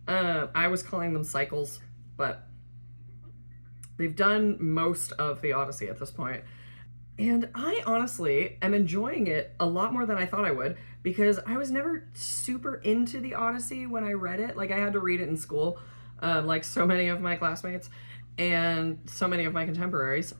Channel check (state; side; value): inverted; both; correlation -1.00